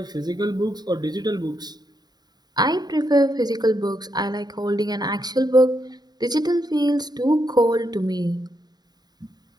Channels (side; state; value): left; late; 0.20 ms